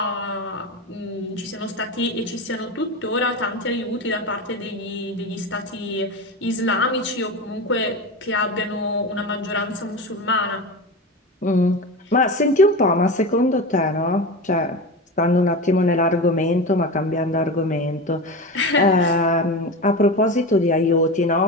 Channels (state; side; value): normal; both; correlation 0.24